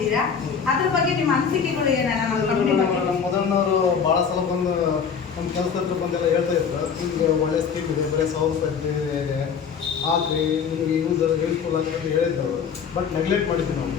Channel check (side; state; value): right; quieter; 6.6 dB